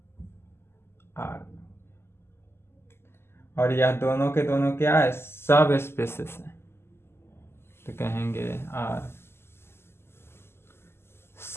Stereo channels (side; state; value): right; late; 0.12 ms